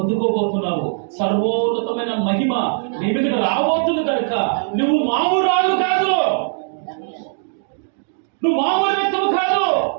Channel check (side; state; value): left; silent; digital silence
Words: సర్వోన్నతమైన మహిమ నీ మీదకు రాబోతుంది కనుక నువ్వు మామూలు కాదు, నువ్వు మామూలు వ్యక్తువు కాదు.